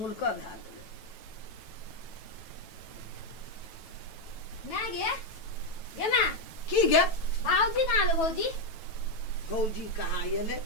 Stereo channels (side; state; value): right; late; 9.2 ms